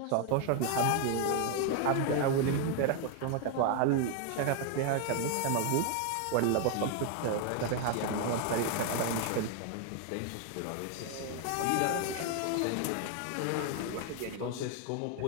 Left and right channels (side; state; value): both; different; correlation 0.00